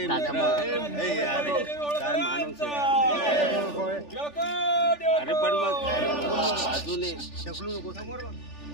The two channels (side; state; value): right; late; 3.4 ms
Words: काय माणूस अरे पण मग अजून शकलो नको